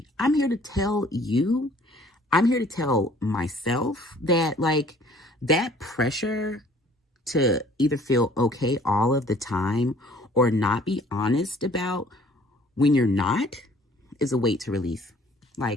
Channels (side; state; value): both; normal; correlation 0.55